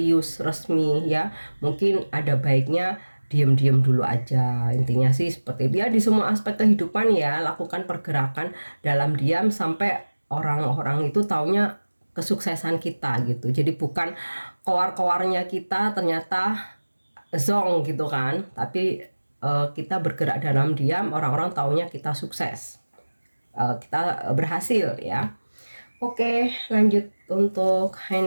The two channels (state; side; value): inverted; both; correlation -1.00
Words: resmi ya, mungkin ada baiknya diam-diam dulu aja. Intinya sih seperti dia di semua aspek kehidupan ya, lakukan pergerakan dalam diam sampai orang-orang itu taunya kesuksesan kita gitu. Jadi bukan keluar-keluarnya kita ternyata zong gitu kan, tapi kita bergerak dalam diam, orang-orang taunya kita sukses, kita berhasil ya. Oke, lanjut untuk